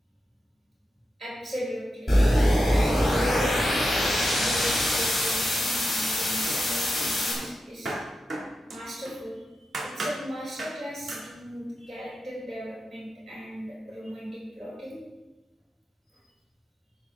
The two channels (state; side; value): normal; both; correlation 0.89